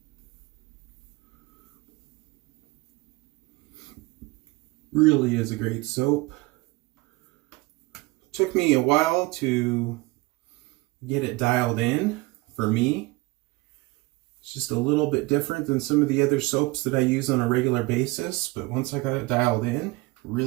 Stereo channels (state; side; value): quieter; left; 22.5 dB